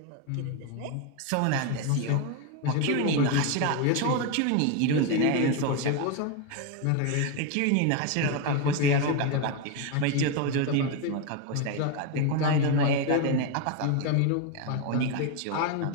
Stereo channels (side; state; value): both; different; correlation 0.02